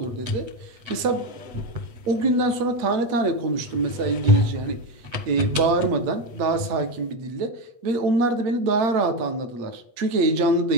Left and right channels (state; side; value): late; left; 8.4 ms